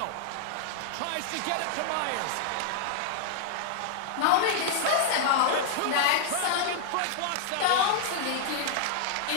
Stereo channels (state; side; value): different; both; correlation -0.01